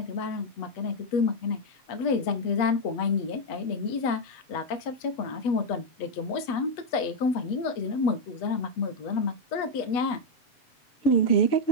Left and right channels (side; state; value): right; late; 8.2 ms